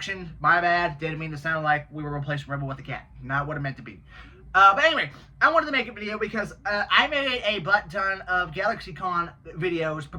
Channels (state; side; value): identical; both; correlation 1.00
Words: my bad. Didn't mean to sound like we were replacing Rebel with a cat. Not what it meant to be. But anyway, I wanted to make a video because I made a butt ton of GalaxyCon videos